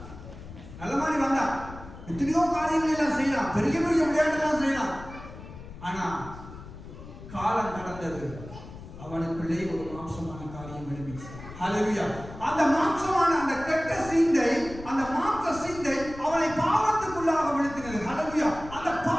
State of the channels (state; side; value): noise; left; rumble, 14 dB below the sound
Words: நல்ல மாதிரி வந்தான். எத்தனையோ காரியங்கள் எல்லாம் செய்யலாம், பெரிய பெரிய விளையாட்டுலாம் செய்யலாம். ஆனா காலம் கடந்தது. அவனுக்குள்ளே ஒரு மாம்சமான காரியம் எழுப்பிச்சு. ஹல்லேலூயா. அந்த மாம்சமான அந்த கெட்ட சிந்தை, அந்த மாம்ச சிந்தை அவனை பாவத்துக்குள்ளாக விழுத்தினது. ஹல்லேலூயா. அந்த